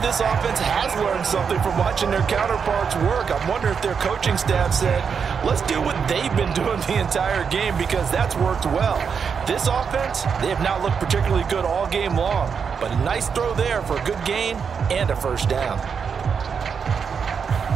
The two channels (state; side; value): quieter; left; 6.4 dB